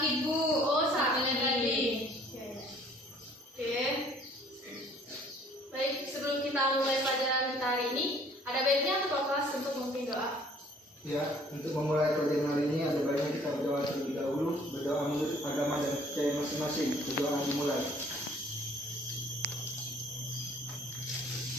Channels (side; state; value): both; normal; correlation 0.57